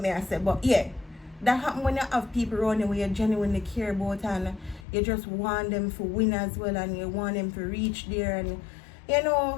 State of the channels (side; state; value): right; drops out; at 4.9 s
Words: me I say. But yeah, that happen when you have people around you where you genuinely care about and you just want them to win as well, and you want them to reach there, and you